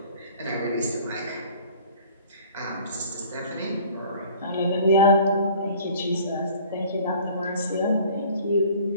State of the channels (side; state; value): both; inverted; correlation -0.48